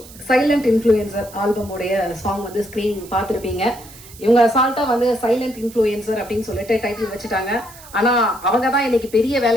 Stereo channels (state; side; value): noise; right; hiss, 20 dB below the sound